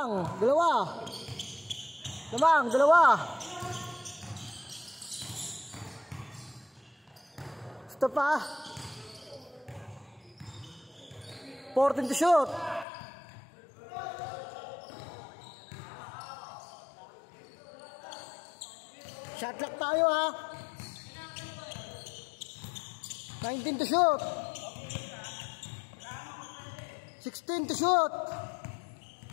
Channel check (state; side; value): drops out; right; at 12.9 s